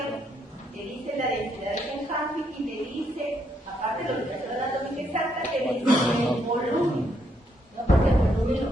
te dice la densidad de Kenhafi y te dice, aparte de la ubicación anatómica exacta, te dice el volumen. No, porque el volumen lo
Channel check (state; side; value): normal; both; correlation 0.75